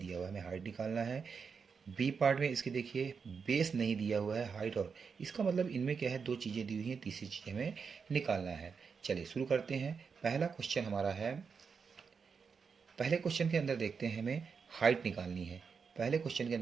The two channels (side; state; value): left; quieter; 5.8 dB